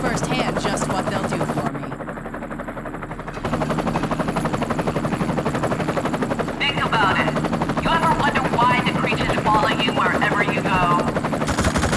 just what they'll do for me. Think about it. You ever wonder why the creatures follow you wherever you go?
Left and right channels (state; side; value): identical; both; correlation 1.00